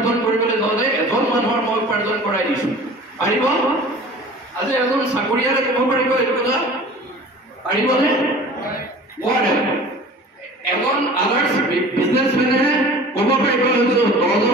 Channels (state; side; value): normal; both; correlation 0.43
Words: কৰিবলৈ যাওঁতে এজন মানুহৰ মই উপাৰ্জন কৰাই দিছোঁ পাৰিব আজি এজন চাকৰিয়ালে ক'ব পাৰিব এইটো কথা পাৰিবনে নোৱাৰে এজন আদাৰ্ছ বিজনেছমেনে ক'ব পাৰিব